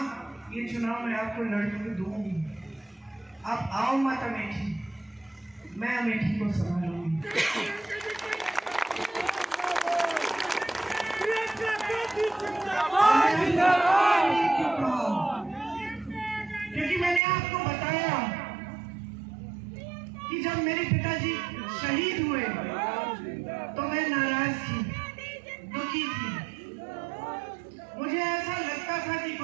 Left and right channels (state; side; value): drops out; left; at 17.2 s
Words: ये चुनाव मैं आपको लड़के दूंगी, आप आओ मत अमेठी, मैं अमेठी को संभालूंगी। क्योंकि मैंने आपको बताया कि जब मेरे पिताजी शहीद हुए तो मैं नाराज थी, दुखी थी। मुझे ऐसा लगता था कि